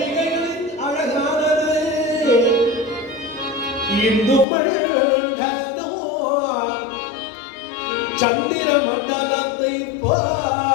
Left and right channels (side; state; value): right; drops out; at 4.5 s